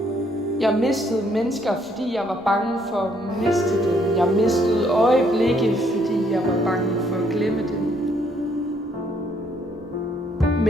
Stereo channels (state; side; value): normal; both; correlation 0.68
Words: Jeg mistede mennesker, fordi jeg var bange for at miste dem. Jeg mistede øjeblikke, fordi jeg var bange for at glemme dem.